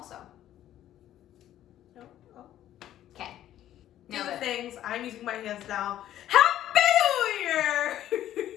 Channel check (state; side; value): quieter; right; 12.3 dB